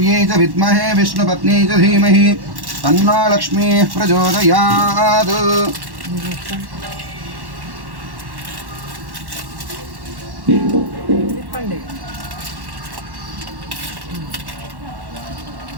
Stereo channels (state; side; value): late; left; 1.1 ms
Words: च विद्महे विष्णुपत्नी च धीमहि तन्नो लक्ष्मीः प्रचोदयात्